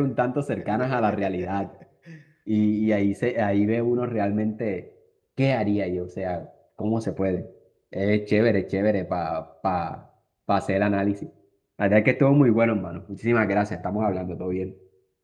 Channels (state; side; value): identical; both; correlation 1.00